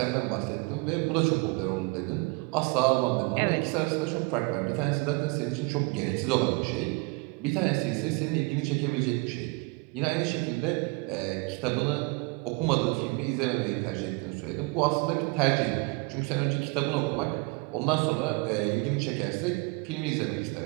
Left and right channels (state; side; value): quieter; left; 28.8 dB